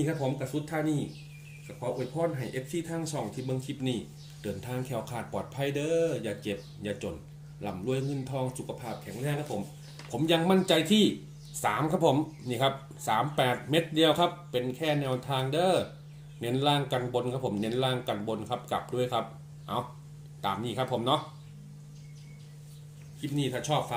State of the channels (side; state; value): both; identical; correlation 1.00